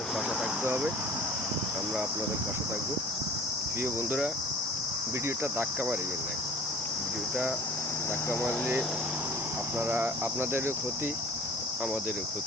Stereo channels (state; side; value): normal; both; correlation 0.45